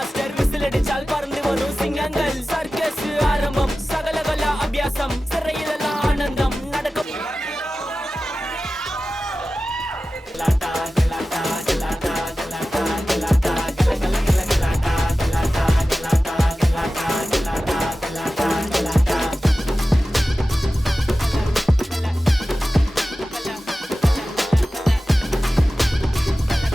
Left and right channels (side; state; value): both; normal; correlation 0.95